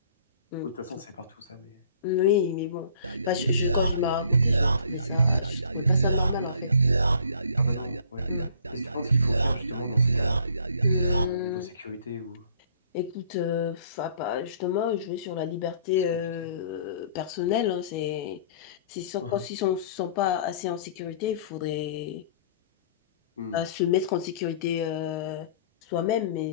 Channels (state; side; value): inverted; both; correlation -0.53